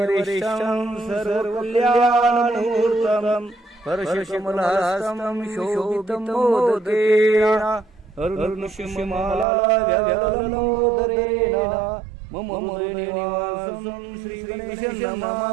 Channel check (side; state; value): left; drops out; at 9.5 s